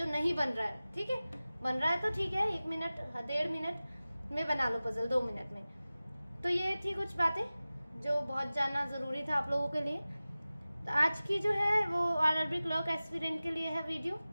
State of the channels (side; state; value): both; inverted; correlation -0.97